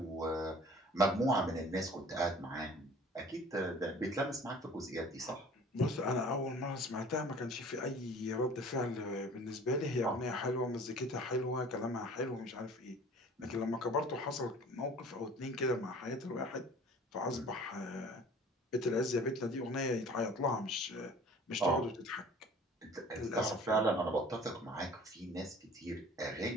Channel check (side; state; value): both; normal; correlation 0.47